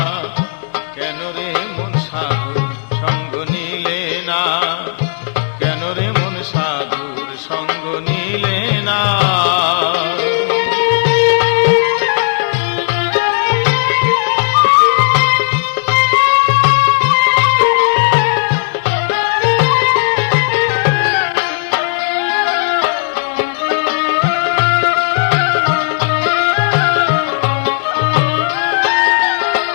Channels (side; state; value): right; silent; 70 dB below the other